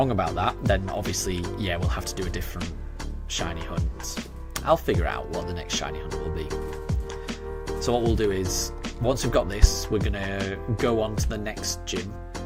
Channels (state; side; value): identical; both; correlation 1.00